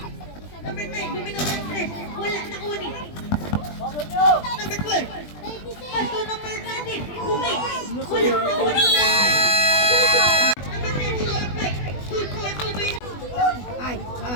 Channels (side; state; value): right; late; 20 ms